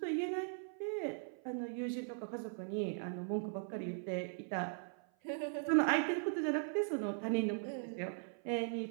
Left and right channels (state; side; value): silent; left; 51 dB below the other